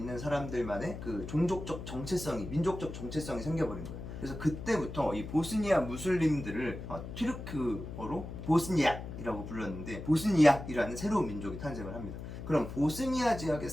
사람들만의 그 종족적 정체성이, 민족적 정체성이 생겨버린 거예요. 그래서 그때부터 이 보스니아 무슬림들을 튀르크어로 보스니악이라고 불렀는데 보스니악이라는 새로운 민족이 탄생을 합니다. 그럼 보스니아 지역에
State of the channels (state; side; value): noise; left; hum, 9 dB below the sound